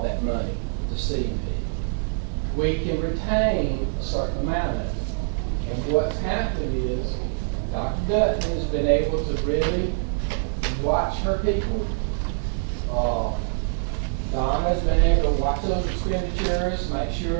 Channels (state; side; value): silent; left; digital silence